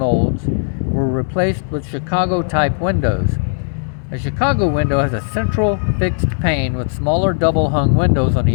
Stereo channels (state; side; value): silent; right; 66 dB below the other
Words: were replaced with Chicago-type windows. A Chicago window has a central fixed pane with smaller double-hung windows on